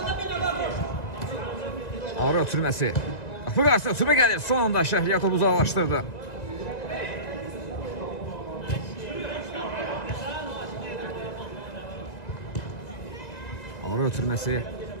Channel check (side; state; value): right; late; 2.0 ms